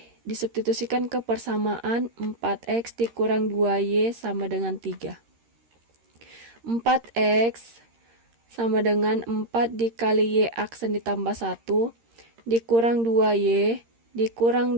disubstitusikan ke persamaan 4X dikurang 2Y sama dengan 3. 4X sama dengan 4 dikali Y aksen ditambah 1 dikurang 2Y dikurang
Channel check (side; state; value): left; late; 13 ms